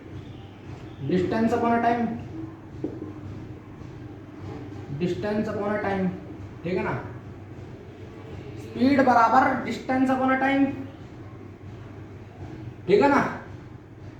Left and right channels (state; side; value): identical; both; correlation 1.00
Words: distance upon time, distance upon time, ठीक है ना। स्पीड बराबर डिस्टेंस अपॉन टाइम, ठीक है ना।